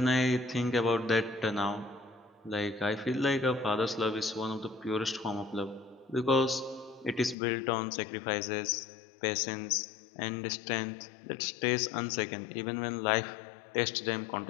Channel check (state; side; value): drops out; right; at 7.4 s